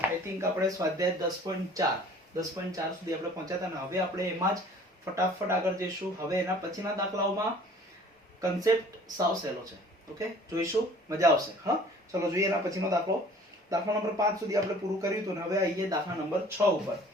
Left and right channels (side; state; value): both; normal; correlation 0.50